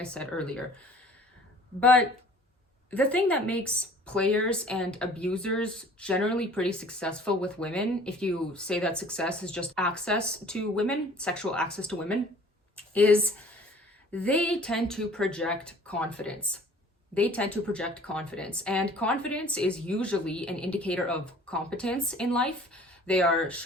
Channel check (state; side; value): normal; both; correlation 0.51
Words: said earlier. But the thing that makes players and abusers generally pretty successful with women, if you say that success is just access to women, sexual access to women, is they tend to project confidence. They tend to project confidence, and confidence is usually an indicator of competence in life. They are